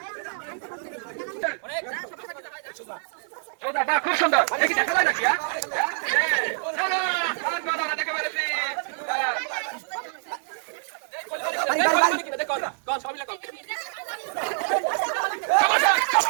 খুব সুন্দর দেখি দেখা যায় নাকি দেখে পেরেছি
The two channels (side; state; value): left; silent; 61 dB below the other